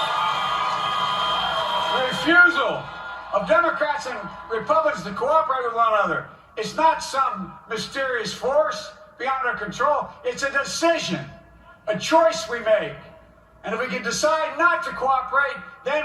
The refusal of Democrats and Republicans to cooperate with one another, it's not some mysterious force beyond our control. It's a decision, a choice we make. And if we can decide not to cooperate, then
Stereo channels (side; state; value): both; identical; correlation 1.00